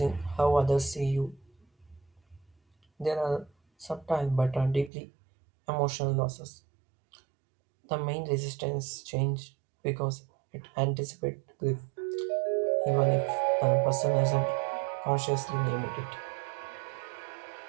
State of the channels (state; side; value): drops out; left; at 4.9 s